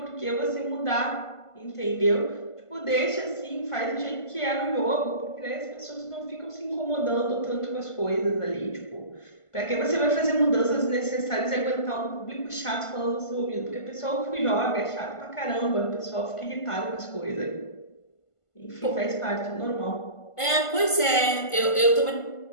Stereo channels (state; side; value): late; right; 1.5 ms